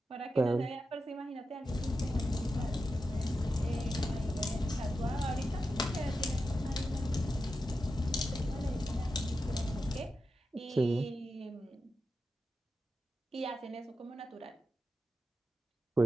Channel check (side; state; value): both; normal; correlation 0.89